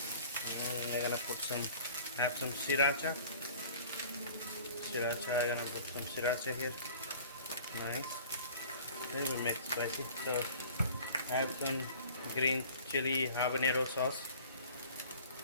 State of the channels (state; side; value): inverted; both; correlation -0.47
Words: And I'm gonna put have some sriracha. I'm gonna put some sriracha here. Nice. Then we make spicy. So I have some green chili habanero sauce.